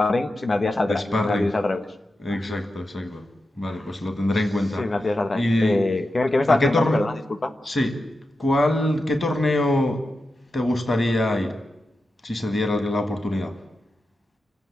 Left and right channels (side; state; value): both; normal; correlation 0.90